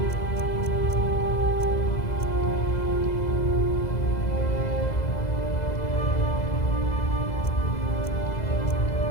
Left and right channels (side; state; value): right; late; 2.0 ms